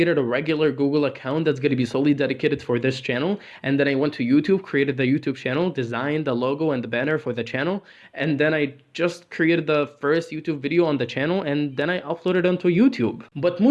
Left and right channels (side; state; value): both; identical; correlation 1.00